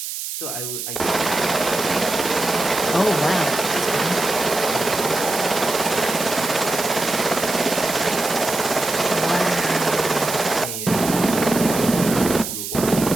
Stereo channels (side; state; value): right; noise; hiss, 6 dB below the sound